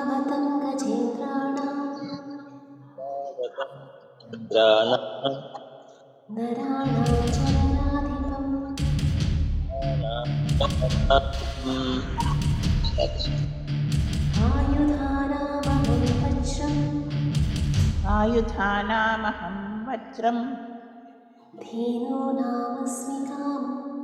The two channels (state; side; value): identical; both; correlation 1.00